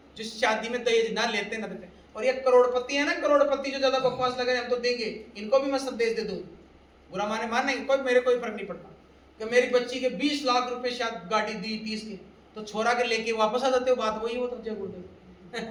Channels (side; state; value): both; identical; correlation 1.00